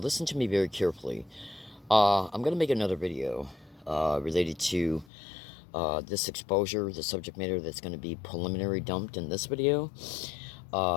to me very carefully. I'm going to make another video related to this exposure, the subject matter that's going to be preliminary dumped in this video.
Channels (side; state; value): right; drops out; at 5.1 s